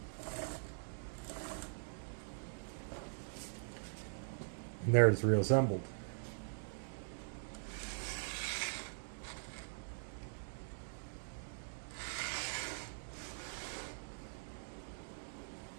And there it's reassembled.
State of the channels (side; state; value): left; silent; digital silence